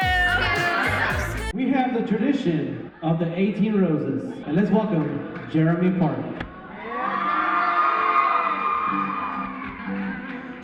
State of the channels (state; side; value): identical; both; correlation 1.00